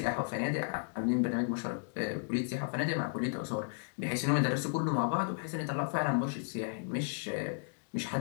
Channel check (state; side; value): silent; right; digital silence